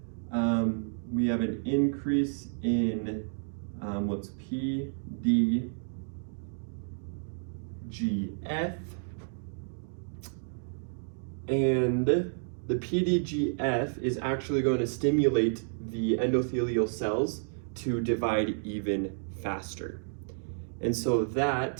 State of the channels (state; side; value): silent; left; digital silence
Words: We have an increase in what's PDGF. And the PDGF is actually going to stimulate the endothelial cells to divide even faster. And so